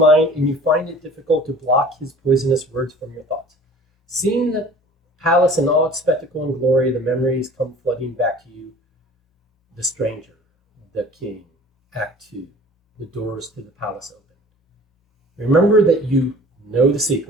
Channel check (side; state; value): both; normal; correlation 0.46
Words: and you find it difficult to block his poisonous words from your thoughts. Seeing the palace in all its spectacle and glory, the memories come flooding back to you. The stranger, the king, Act 2, the doors to the palace open. Remember that you know the